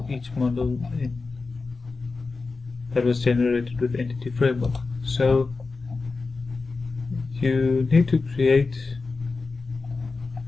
each model that was generated with Entity Framework. So you need to create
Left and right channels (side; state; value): right; quieter; 4.0 dB